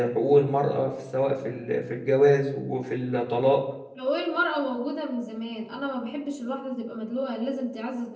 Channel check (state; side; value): identical; both; correlation 1.00